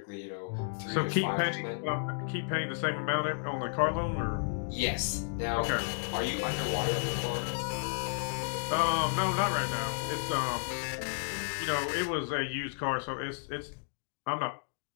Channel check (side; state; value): right; silent; digital silence